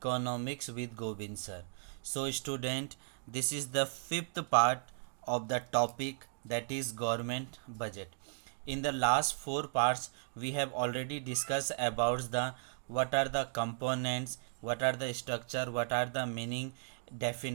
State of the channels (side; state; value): left; silent; digital silence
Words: with Govind sir. So student, this is the fifth part of the topic, that is government budget. In the last four parts we have already discussed about the what are the components, what are the structure, what are the meaning,